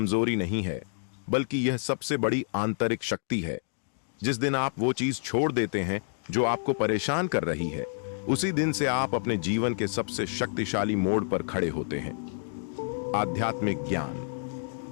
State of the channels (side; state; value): right; silent; digital silence